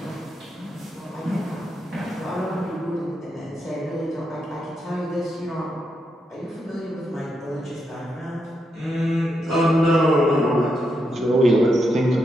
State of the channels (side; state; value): both; normal; correlation 0.83